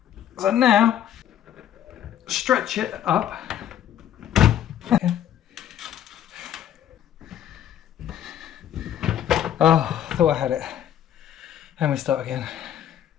So now, stretch it up. Okay. Oh, I thought I had it. And we start again.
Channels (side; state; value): right; quieter; 10.7 dB